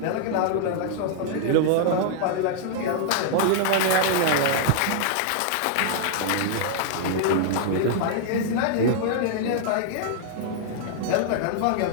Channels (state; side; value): different; both; correlation -0.01